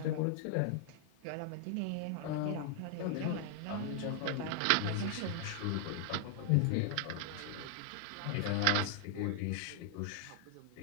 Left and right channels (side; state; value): both; different; correlation 0.00